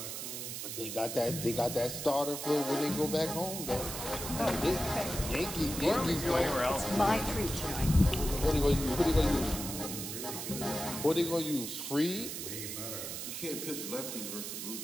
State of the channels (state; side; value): noise; right; hiss, 6 dB below the sound